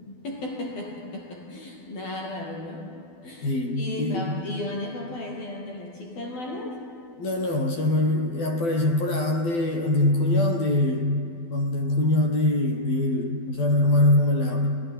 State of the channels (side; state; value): right; late; 12 ms